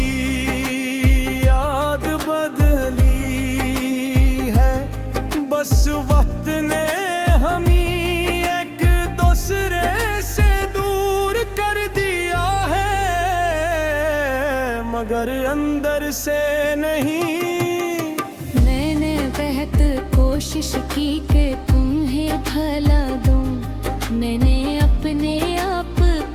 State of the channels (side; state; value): both; identical; correlation 1.00